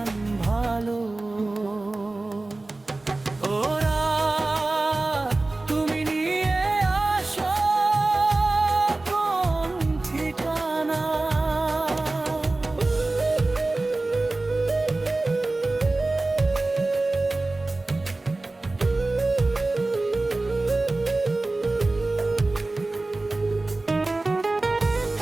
ভালো। ওরা তুমি নিয়ে আসো কোন ঠিকানা।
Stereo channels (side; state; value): left; quieter; 3.1 dB